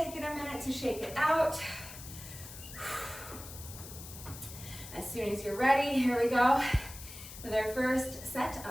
a minute to shake it out. As soon as you're ready, here we go with our first set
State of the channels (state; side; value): noise; left; hiss, 13 dB below the sound